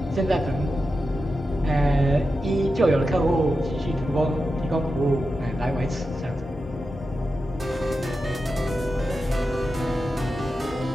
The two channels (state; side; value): normal; both; correlation 0.90